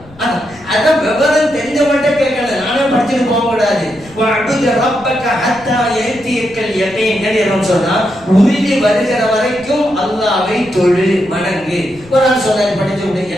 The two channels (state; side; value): noise; left; rumble, 23 dB below the sound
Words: அதான் விவரம் தெரிஞ்ச மட்டும் கேட்கல, நானே படிச்சுட்டு போக கூடாது. உறுதி வருகிற வரைக்கும் அல்லாஹ்வை தொழு, வணங்கு. ஒரு ஆள் சொன்னாரு படிச்சு விட்டு,